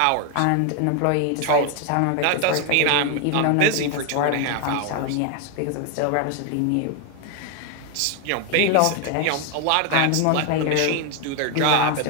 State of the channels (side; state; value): both; different; correlation 0.01